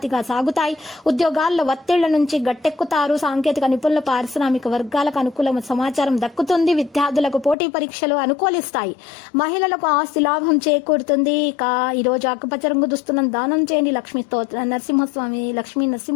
సాగుతాయి. ఉద్యోగాల్లో ఒత్తిళ్ల నుంచి గట్టెక్కుతారు. సాంకేతిక నిపుణుల పారిశ్రామిక వర్గాలకు అనుకూల సమాచారం దక్కుతుంది. విద్యార్థులకు పోటీ పరీక్షలు అనుకూలిస్తాయి. మహిళలకు ఆస్తి లాభం చేకూరుతుంది. ఇక ఈ రోజు ఆకుపచ్చ రంగు దుస్తులను దానం చేయండి. లక్ష్మీ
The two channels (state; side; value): drops out; right; at 7.6 s